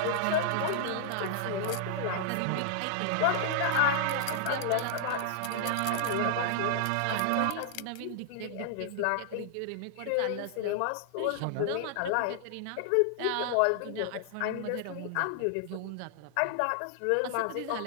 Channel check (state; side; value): different; both; correlation -0.01